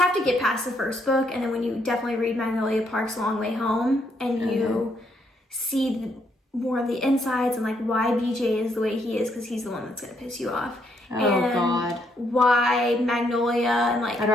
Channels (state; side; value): normal; both; correlation 0.74